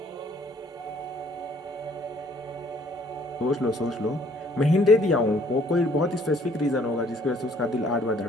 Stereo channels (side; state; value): both; normal; correlation 0.61